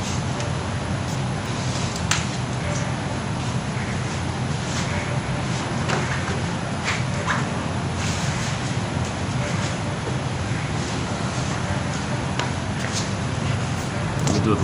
We'll do it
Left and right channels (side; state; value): both; identical; correlation 1.00